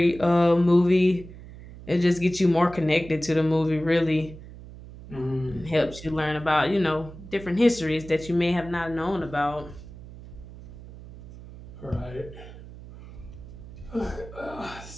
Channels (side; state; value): right; noise; hum, 16 dB below the sound